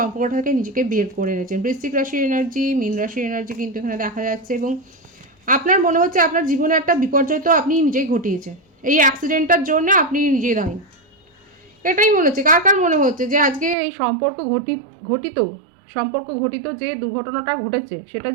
থেকে নিজেকে বের করে এনেছেন। বৃশ্চিক রাশির এনার্জি, মীন রাশির এনার্জি কিন্তু এখানে দেখা যাচ্ছে। এবং আপনার মনে হচ্ছে আপনার জীবনে একটা বিপর্যয় তো আপনি নিজেই ঘটিয়েছেন, এই অ্যাক্সিডেন্টটার জন্য আপনি নিজেই দায়ী। এটাই মনে হচ্ছে। কার কার মনে হচ্ছে যে আজকে এই সম্পর্ক ঘটিত সম্পর্ক ঘটিত যে দুর্ঘটনাটা ঘটেছে সেটার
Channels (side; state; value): left; drops out; at 13.8 s